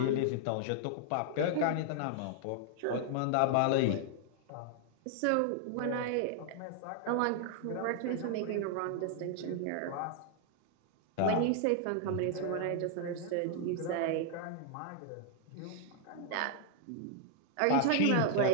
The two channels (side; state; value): both; different; correlation -0.01